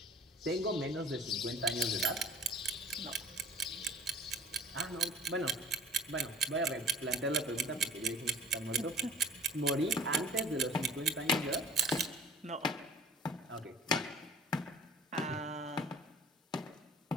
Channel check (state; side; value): normal; both; correlation 0.47